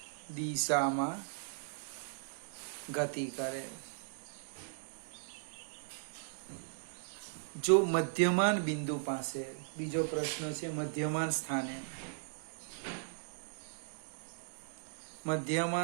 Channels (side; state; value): left; silent; digital silence